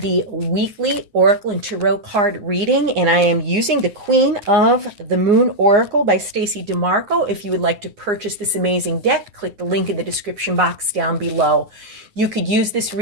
weekly Oracle and Tarot card reading, and I am using the Queen of the Moon Oracle by Stacey DeMarco. If you would like to purchase this amazing deck, click the link in the description box down below. You could use this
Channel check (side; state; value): left; late; 9.6 ms